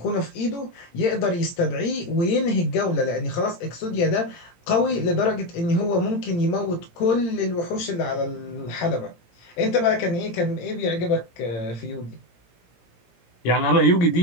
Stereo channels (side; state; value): right; late; 17 ms